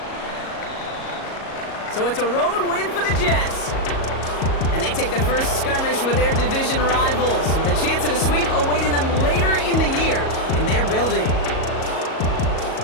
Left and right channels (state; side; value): late; right; 37 ms